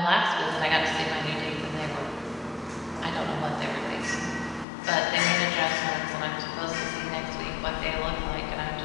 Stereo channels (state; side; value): drops out; right; at 4.7 s